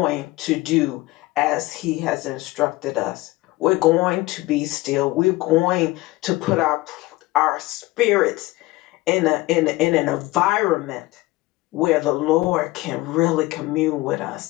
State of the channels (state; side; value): quieter; right; 19.8 dB